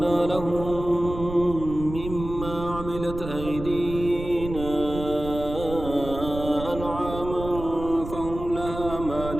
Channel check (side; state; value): right; noise; rumble, 9 dB below the sound